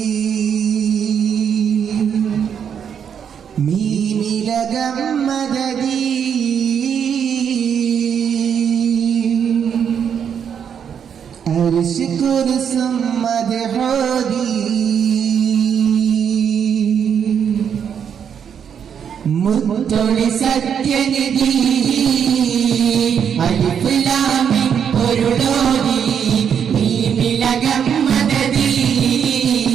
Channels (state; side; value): quieter; left; 7.9 dB